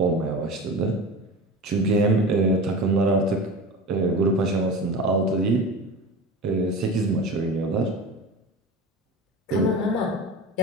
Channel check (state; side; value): normal; both; correlation 0.31